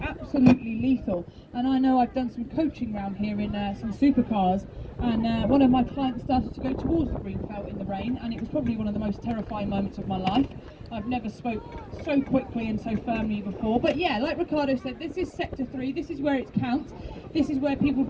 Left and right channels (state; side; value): identical; both; correlation 1.00